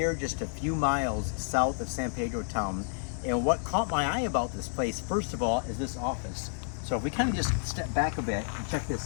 just a few miles south of San Pedro town, and what caught my eye about this place, first of all, is this office. So if we kind of just step back a bit and check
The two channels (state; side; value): silent; right; digital silence